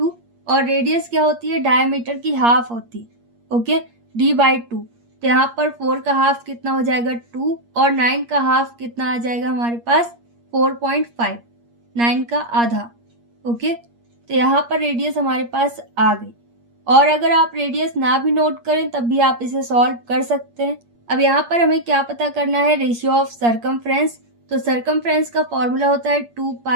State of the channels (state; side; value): late; left; 8.5 ms